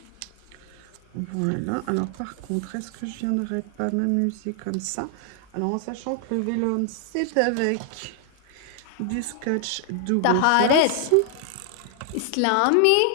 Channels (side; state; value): both; different; correlation 0.00